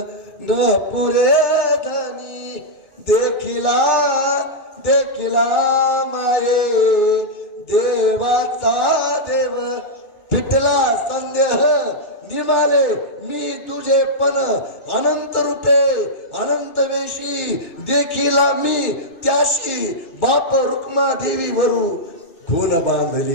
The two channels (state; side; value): late; right; 3.3 ms